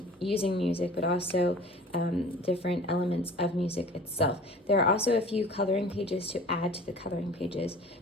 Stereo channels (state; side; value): normal; both; correlation 0.44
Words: music, but also different elements of music itself. There are also a few coloring pages to add to the coloring pages